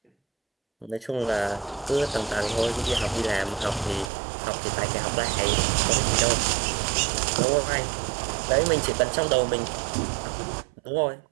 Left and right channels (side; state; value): left; drops out; at 4.1 s